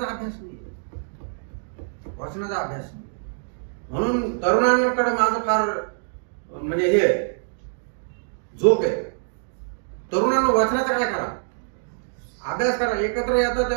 अभ्यास नाही, वाचनाचा अभ्यास नाही. म्हणून तरुणांकडे माझं फार म्हणजे हे जोक आहे. तरुणांना वाचनाचा काय करा, अभ्यास करा. एकत्र येतं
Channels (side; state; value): left; silent; digital silence